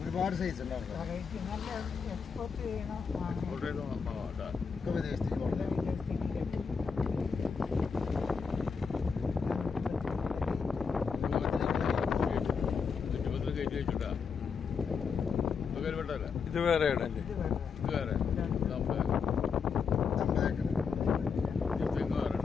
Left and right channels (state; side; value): quieter; right; 5.8 dB